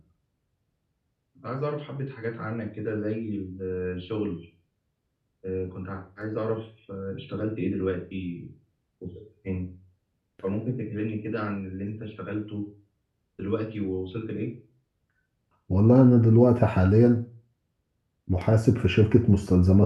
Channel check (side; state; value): both; identical; correlation 1.00